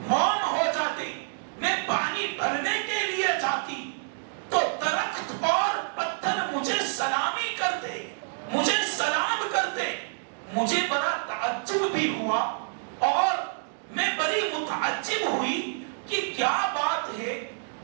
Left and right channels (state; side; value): silent; left; digital silence